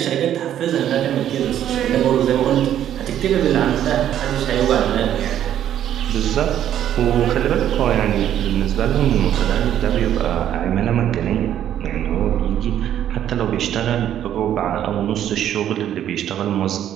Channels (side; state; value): left; quieter; 10.8 dB